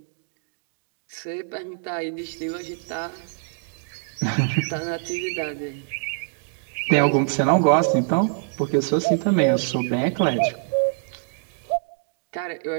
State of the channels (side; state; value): left; silent; digital silence